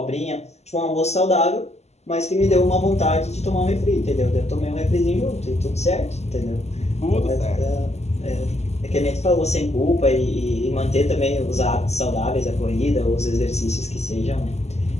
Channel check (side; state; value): right; late; 0.32 ms